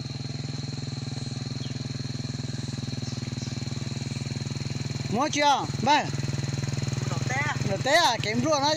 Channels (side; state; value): both; identical; correlation 1.00